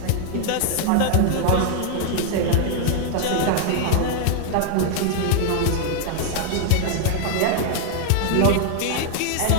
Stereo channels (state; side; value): different; both; correlation 0.00